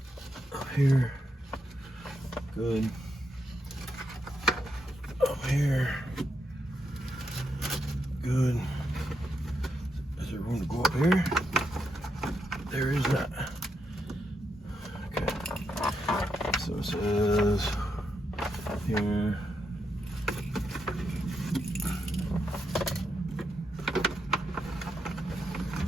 Up here, good. Up here, good. Is there room to go up here? There is not. Okay. So it says here.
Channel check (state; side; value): normal; both; correlation 0.82